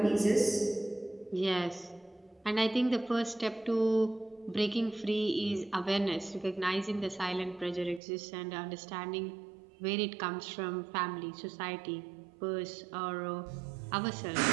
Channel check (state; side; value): drops out; left; at 8.0 s